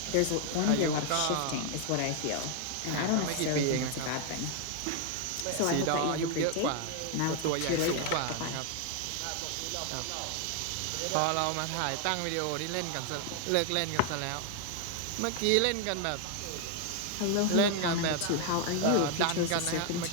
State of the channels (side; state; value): both; different; correlation 0.00